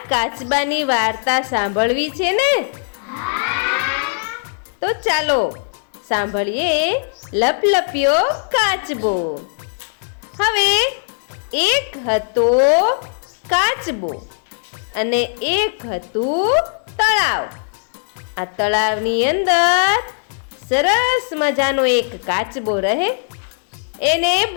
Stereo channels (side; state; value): right; silent; digital silence